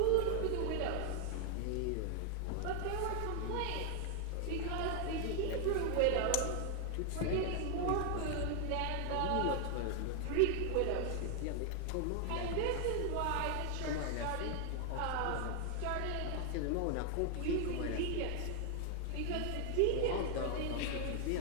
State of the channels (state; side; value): different; both; correlation 0.00